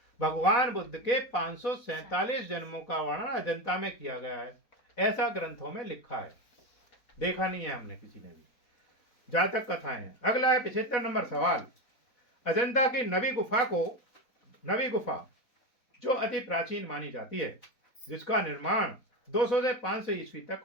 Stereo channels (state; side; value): late; right; 4.1 ms